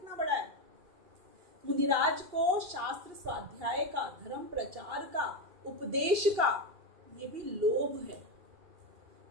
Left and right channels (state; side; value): late; left; 2.7 ms